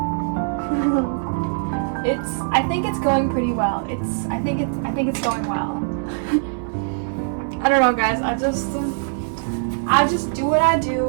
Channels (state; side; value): silent; left; digital silence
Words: that. I think it's going pretty well. I think it's going well. I don't know, guys. I just do what I